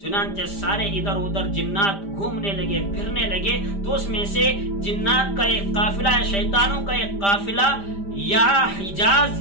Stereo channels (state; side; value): late; right; 5.0 ms